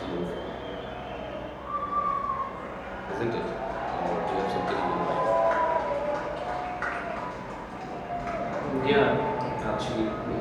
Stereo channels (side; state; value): both; identical; correlation 1.00